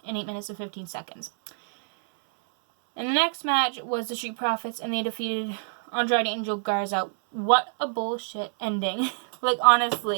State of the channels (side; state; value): left; silent; 59 dB below the other